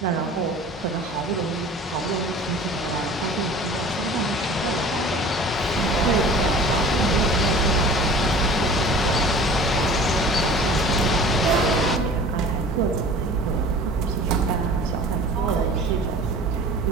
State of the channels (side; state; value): both; normal; correlation 0.43